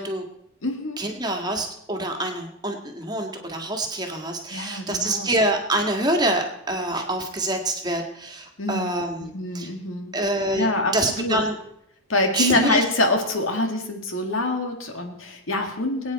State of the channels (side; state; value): both; normal; correlation 0.07